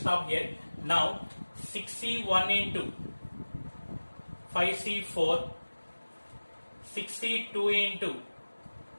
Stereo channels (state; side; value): inverted; both; correlation -1.00